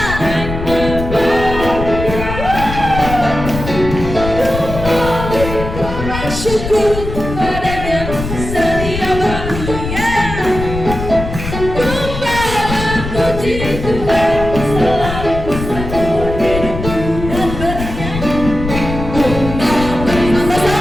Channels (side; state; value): left; noise; rumble, 6 dB below the sound